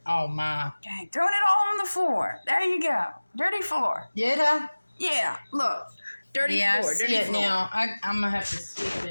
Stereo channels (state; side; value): inverted; both; correlation -1.00